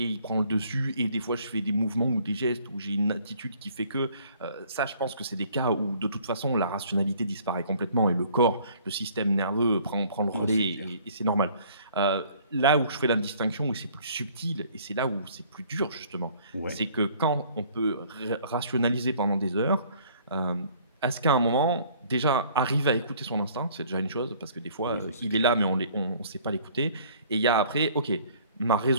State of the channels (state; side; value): inverted; both; correlation -0.57